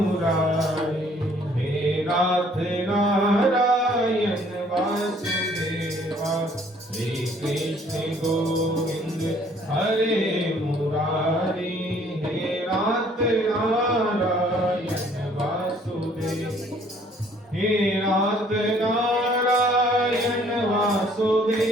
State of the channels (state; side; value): normal; both; correlation 0.60